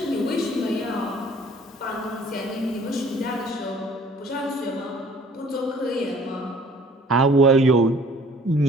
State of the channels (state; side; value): normal; both; correlation 0.53